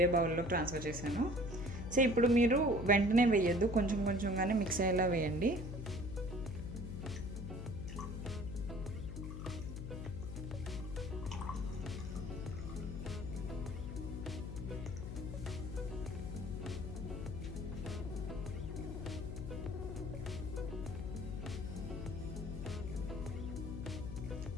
బౌల్లో ట్రాన్స్ఫర్ చేశాను. సో ఇప్పుడు మీరు వెంటనే వేయద్దు, కొంచెం కొంచెంగానే మిక్స్ అయ్యేలా వేయండి.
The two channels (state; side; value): noise; left; hum, 6 dB below the sound